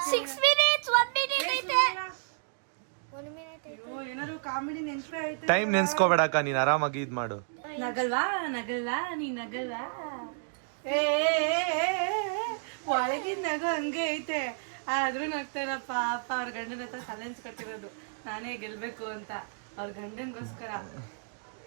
6 ಮಿನಿಟ್ಸ್ 1 ಮಿನಿಟ್ ಐತೆ. 1 ಮಿನಿಟ್ ಐತೆ. ಅಯ್ಯೋ ಏನಾದ್ರು ಕಾಮಿಡಿ ನೆನ್ಪೇ ಐತೆ. ಟೈಮ್ ನೆನ್ಸ್ಕೋಬೇಡಕ್ಕ, ನೀನ್ ಆರಾಮಾಗಿ ಇದ್ ಮಾಡು. ನಗಲ್ವಾ ನಗಲ್ವಾ ನೀ ನಗಲ್ವಾ? ಏ ಒಳಗಿನ ನಗು ಹಂಗೆ ಐತೆ, ಆದ್ರೂ ನಗ್ತಾರ. ಪಾಪ ಅವ್ರ ಗಂಡನ ಹತ್ರ ಚಾಲೆಂಜ್ ಕಟ್ಟಿರೋದು ನಾನೇ ಗೆಲ್ಬೇಕು ಅಂತ. ಅವ್ರ ಗಂಡನ್ಗೋಸ್ಕರ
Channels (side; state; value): left; silent; digital silence